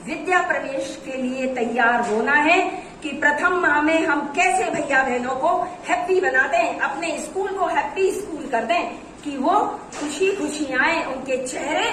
विद्या प्रवेश के लिए तैयार होना है कि प्रथम माह में हम कैसे भैया बहनों को हैप्पी बना दें, अपने स्कूल को हैप्पी स्कूल कर दें, कि वो खुशी खुशी आए, उनके चेहरे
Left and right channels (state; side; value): identical; both; correlation 1.00